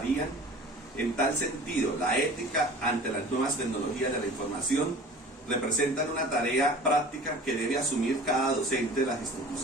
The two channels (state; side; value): normal; both; correlation 0.42